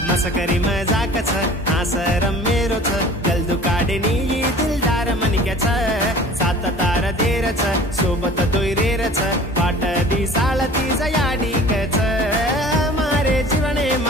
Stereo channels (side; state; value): both; normal; correlation 0.45